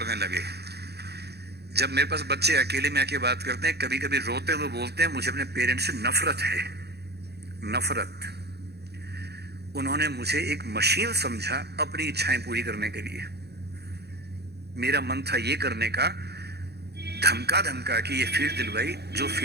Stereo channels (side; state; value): left; late; 0.48 ms